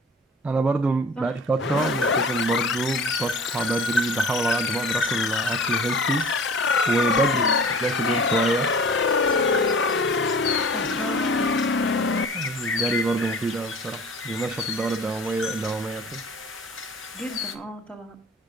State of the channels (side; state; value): both; normal; correlation 0.43